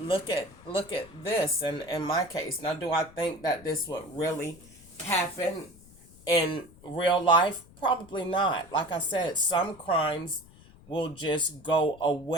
at this, and in my case, now do I think that this would really happen in real life? Probably not. Like I said, some crimes will just go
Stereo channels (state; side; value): noise; left; rumble, 23 dB below the sound